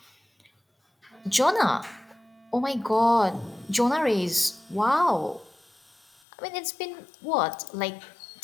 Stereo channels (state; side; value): drops out; right; at 6.2 s